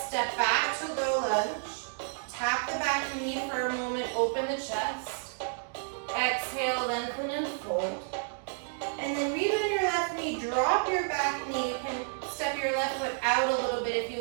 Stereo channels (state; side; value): silent; left; digital silence